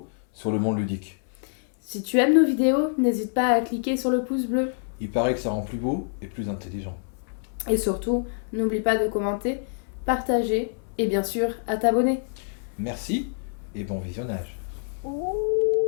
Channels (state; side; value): silent; right; 61 dB below the other